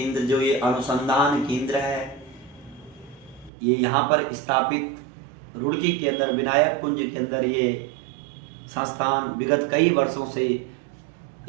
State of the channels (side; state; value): left; drops out; at 3.5 s